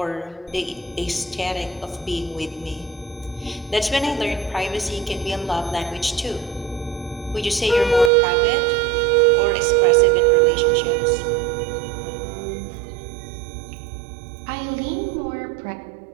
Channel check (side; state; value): left; drops out; at 8.1 s